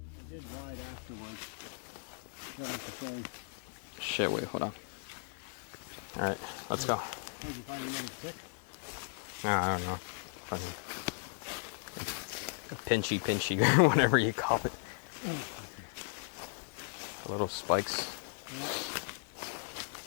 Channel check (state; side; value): silent; right; digital silence